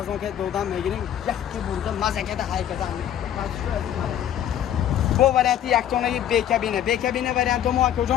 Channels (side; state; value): right; quieter; 10.6 dB